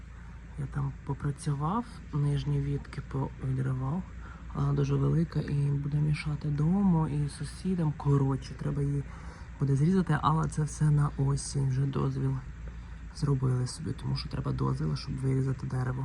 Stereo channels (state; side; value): identical; both; correlation 1.00